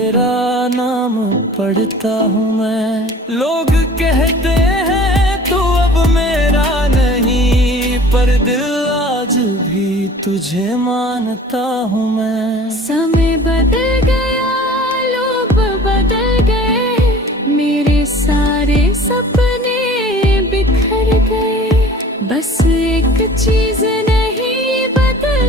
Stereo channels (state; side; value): normal; both; correlation 0.46